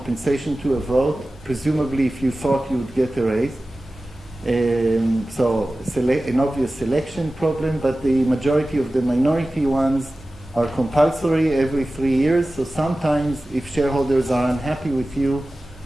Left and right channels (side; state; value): both; normal; correlation 0.96